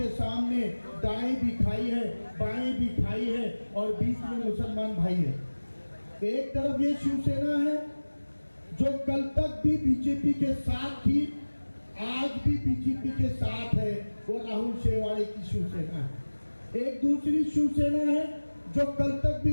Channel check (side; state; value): both; inverted; correlation -1.00